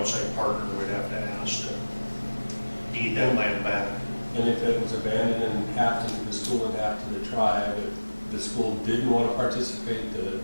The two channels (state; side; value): inverted; both; correlation -1.00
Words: partner we'd have to ask to deed that land back. And if it was abandoned and half to the school and half to the tribe, the school didn't want to participate, the